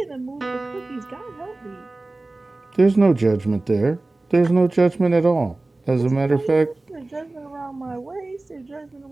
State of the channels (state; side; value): quieter; left; 3.0 dB